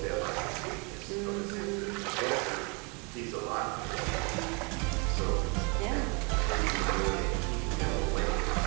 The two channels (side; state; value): left; quieter; 32.3 dB